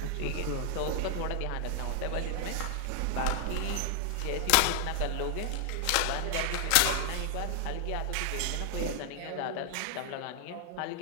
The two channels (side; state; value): both; different; correlation 0.00